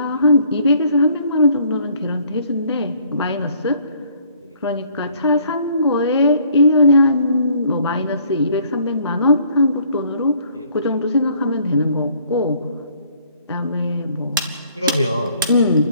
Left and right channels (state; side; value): inverted; both; correlation -0.61